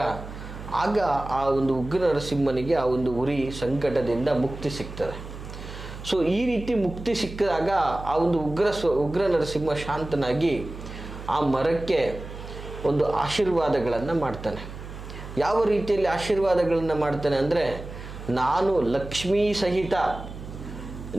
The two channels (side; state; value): right; noise; hum, 12 dB below the sound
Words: ಆಗ ಆ ಒಂದು ಉಗ್ರ ನರಸಿಂಹನಿಗೆ ಆ ಒಂದು ಉರಿ ಸಂಕಟದಿಂದ ಮುಕ್ತಿ ಸಿಗ್ತದೆ. ಸೊ ಈ ರೀತಿ ಮುಕ್ತಿ ಸಿಕ್ಕಿದಾಗ ಆ ಒಂದು ಉಗ್ರ ನರಸಿಂಹ ಶಾಂತನಾಗಿ ಆ ಮರಕ್ಕೆ ಒಂದು ಆಶೀರ್ವಾದಗಳನ್ನು ಮಾಡ್ತಾನೆ. ಯಾವ ರೀತಿಯಲ್ಲಿ ಆಶೀರ್ವಾದಗಳನ್ನು ಮಾಡ್ತಾನೆ ಅಂದರೆ, ನಾನು ಲಕ್ಷ್ಮೀ ಸಹಿತ